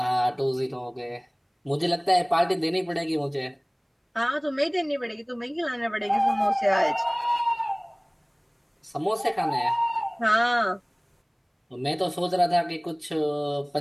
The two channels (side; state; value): both; identical; correlation 1.00